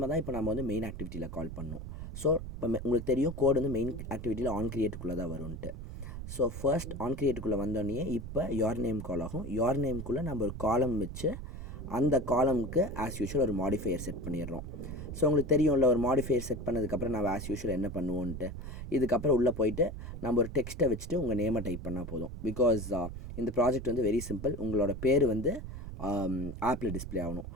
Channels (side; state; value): right; noise; rumble, 9 dB below the sound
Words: தான் இப்போ நம்ம வந்து மெயின் ஆக்டிவிட்டியில் கால் பண்ணணும். ஸோ இப்போ உங்களுக்கு தெரியும் கோட் வந்து மெயின் ஆக்டிவிட்டியில் ஆன் கிரியேட்டுக்குள்ளே தான் வரும்ன்ட்டு. ஸோ ஃபர்ஸ்ட் ஆன் கிரியேட்டுக்குள்ளே வந்தோடனே இப்போ யோர் நேம் கால் ஆகும். யோர் நேம்குள்ளே நம்ம ஒரு காலம் வச்சு அந்த காலமுக்கு ஆஸ் யூஷுவல் ஒரு மாடிஃபையர் செட் பண்ணிடுறோம். ஸோ உங்களுக்கு தெரியும்ல, ஒரு மாடிஃபையர் செட் பண்ணதுக்கப்புறம் நம்ம ஆஸ் யூஷுவல் என்ன பண்ணுவோன்ட்டு. இதுக்கப்புறம் உள்ளே போயிட்டு நம்ம ஒரு டெக்ஸ்ட்டை வச்சுட்டு உங்கள் நேமை டைப் பண்ணால் போதும். பிகாஸ் இந்த ப்ராஜெக்ட் வந்து வெரி சிம்பிள். உங்களோட பேர் வந்து ஆப்பில் டிஸ்பிளே ஆகணும்.